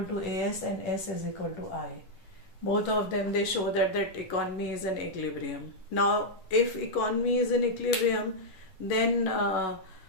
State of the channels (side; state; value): right; late; 11 ms